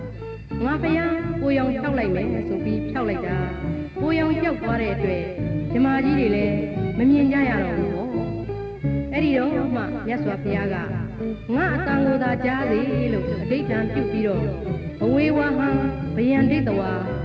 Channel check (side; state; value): both; identical; correlation 1.00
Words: ငါဖယားကိုရောင်ဖြောက်လိုက်မယ်ဆိုပြီးဖြောက်လိုက်တာကိုရောင်ကြောက်သွားတဲ့အတွက်ဗြဟ္မာကြီးတွေလည်းမမြင်ကြရတော့ဘူးပေါ့အဲ့ဒီတော့မှမြတ်စွာဘုရားကငါအတန်ကိုသာကြားစေလို့အဋ္ဌံပြုပြီးတော့ဘဝေဝဟံဗယံဒိတဝါ